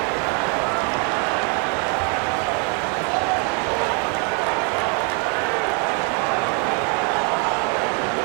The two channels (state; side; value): quieter; left; 38.1 dB